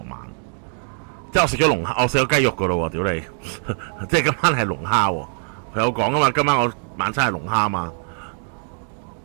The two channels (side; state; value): left; silent; 56 dB below the other